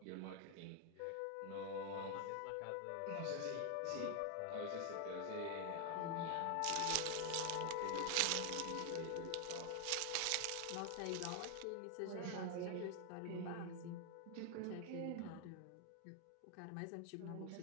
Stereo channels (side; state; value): both; different; correlation 0.00